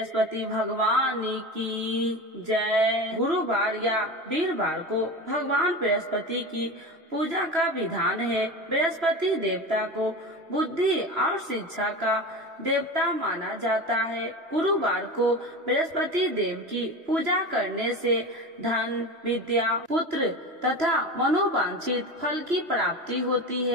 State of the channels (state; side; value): late; left; 3.0 ms